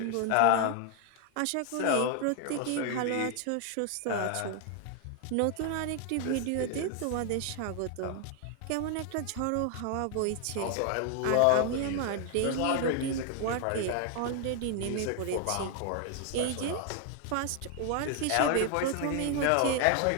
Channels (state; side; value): different; both; correlation 0.00